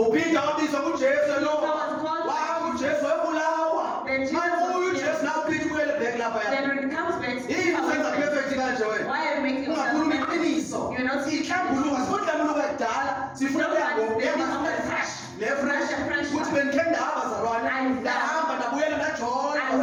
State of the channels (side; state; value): both; identical; correlation 1.00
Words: wabizwa kujesu lo I was called- wahamba ujesu webulawa Then Jesus manje was uyu killed. jesu nawe uphinde ubuyele back lapha Then when it comes back, yini usenza perfect kanje wena why are you making yourself ungakhuluma perfect? iqiniso You're not ihlambuluka sifunhlambuluka kudala sifuna Fresh. nefresh Fresh. ukuthi bendikhe ndahamba bazalwane I- ndahamba ndabuyela ndajola I